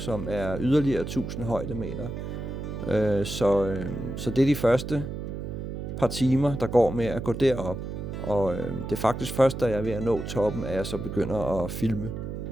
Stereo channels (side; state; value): right; noise; hum, 6 dB below the sound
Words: er yderligere 1000 højdemeter. Så det er de første par timer, der går med at gå derop. Og det er faktisk først, da jeg er ved at nå toppen, at jeg så begynder at filme.